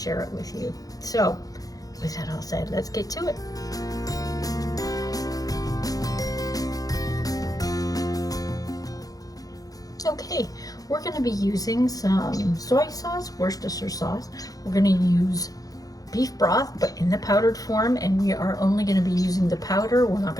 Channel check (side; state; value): right; late; 0.18 ms